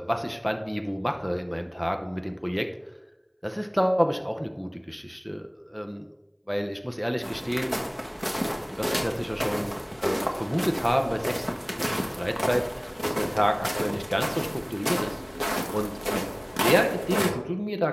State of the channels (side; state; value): both; identical; correlation 1.00